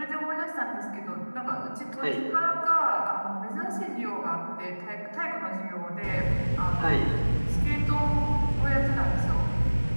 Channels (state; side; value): inverted; both; correlation -1.00